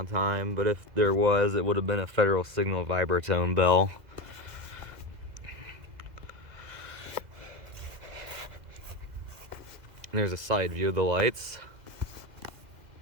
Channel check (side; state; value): left; late; 2.0 ms